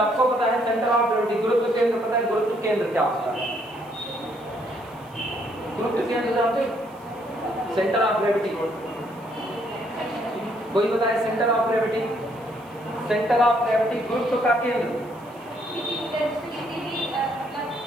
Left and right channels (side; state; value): right; noise; hiss, 29 dB below the sound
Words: पता है सेंटर ऑफ ग्रेविटी, गुरुत्व केंद्र पता है, गुरुत्व केंद्र क्या होता है। गुरुत्व केंद्र जानते हो, सेंटर ऑफ ग्रेविटी। कोई बताए centre of gravity, centre of gravity गुरुत्व का केंद्र।